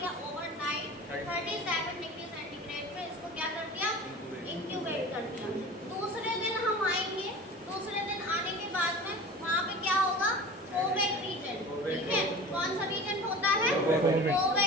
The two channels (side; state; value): both; normal; correlation 0.37